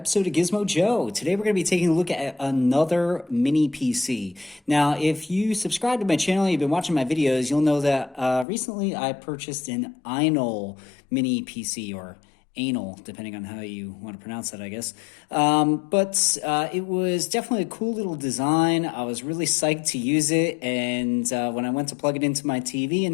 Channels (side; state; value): right; drops out; at 8.5 s